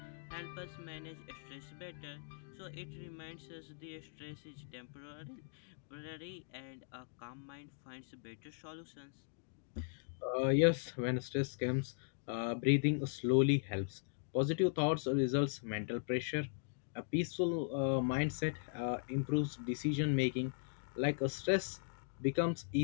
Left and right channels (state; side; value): silent; right; digital silence